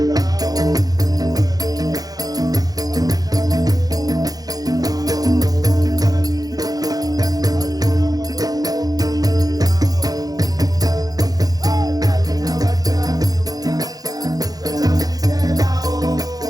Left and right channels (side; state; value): left; late; 0.18 ms